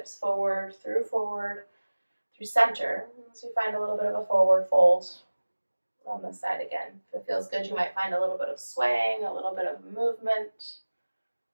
forward, through center. So you find a little bit of a forward fold on this side again. If it feels good, you might find a little bit of swaying, a little bit of movement.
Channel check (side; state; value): both; inverted; correlation -1.00